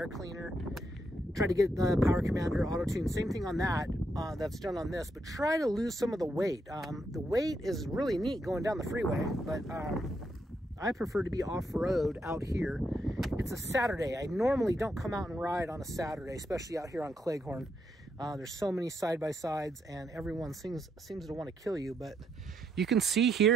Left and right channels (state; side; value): normal; both; correlation 0.78